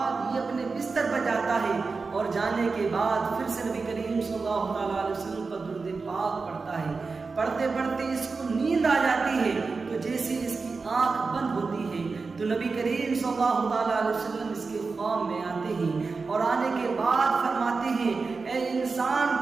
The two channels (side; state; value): left; quieter; 4.3 dB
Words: یہ اپنے بستر پر جاتا ہے، اور جانے کے بعد پھر سے نبی کریم صلی اللہ علیہ وسلم پر درود پاک پڑھتا ہے، پڑھتے پڑھتے اس کو نیند آ جاتی ہے، تو جیسے اس کی آنکھ بند ہوتی ہے تو نبی کریم صلی اللہ علیہ وسلم اس کے خواب میں آتے ہیں، اور آنے کے بعد فرماتے ہیں، اے انسان